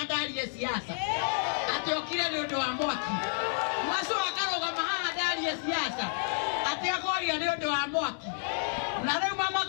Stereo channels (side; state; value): right; silent; 58 dB below the other